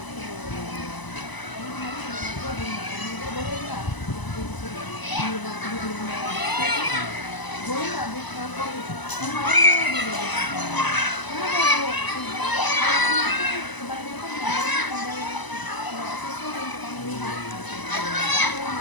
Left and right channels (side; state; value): right; late; 1.0 ms